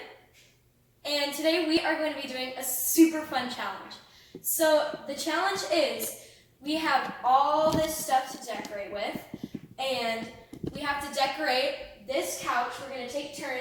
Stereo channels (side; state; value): both; identical; correlation 1.00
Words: And today we are going to be doing a super fun challenge. So the challenge is we have all this stuff to decorate with, and we have to decorate this couch. We're going to take